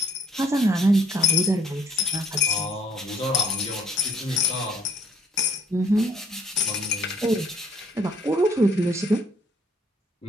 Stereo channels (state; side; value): normal; both; correlation 0.63